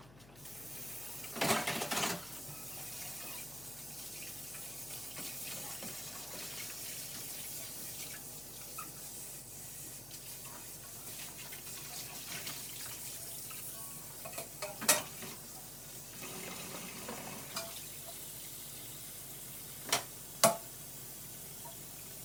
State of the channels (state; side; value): noise; left; hum, 17 dB below the sound